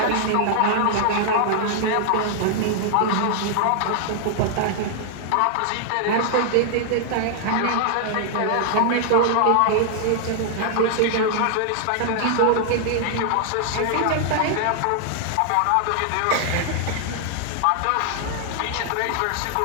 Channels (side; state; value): both; different; correlation 0.00